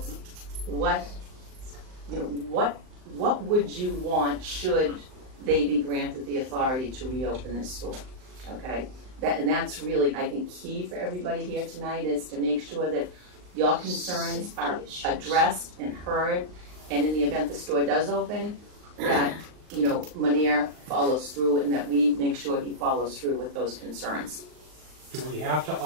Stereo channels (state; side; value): late; left; 39 ms